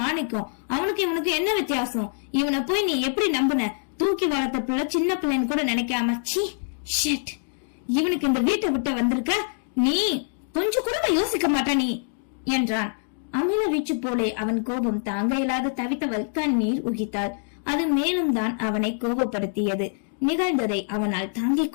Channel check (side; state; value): right; silent; digital silence